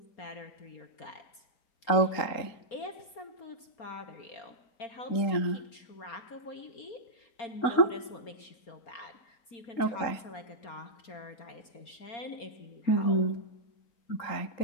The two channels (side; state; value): right; late; 4.3 ms